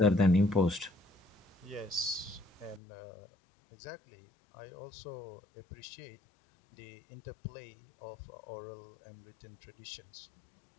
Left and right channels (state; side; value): drops out; right; at 2.8 s